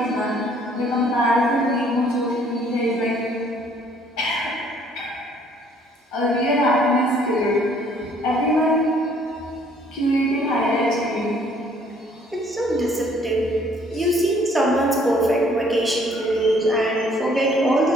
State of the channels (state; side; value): normal; both; correlation 0.61